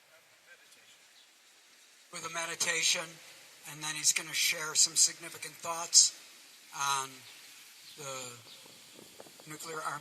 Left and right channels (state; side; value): identical; both; correlation 1.00